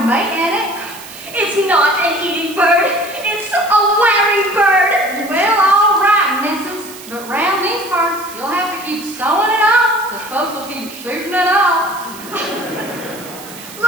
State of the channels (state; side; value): noise; right; hiss, 16 dB below the sound